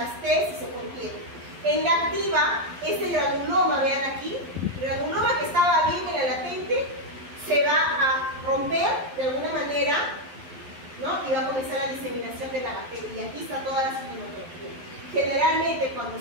T, si se contiene. En la activa, este granuloma, vean aquí, el granuloma que estaba bien en la latente, se va a romper de alguna manera, ¿no? Y va a comenzar la diseminación de la bacteria. Y aquí está toda la sintomatología. Generalmente, cuando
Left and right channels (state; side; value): late; left; 12 ms